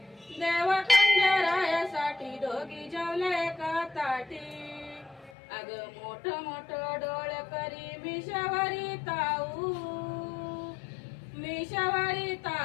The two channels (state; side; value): drops out; right; at 5.3 s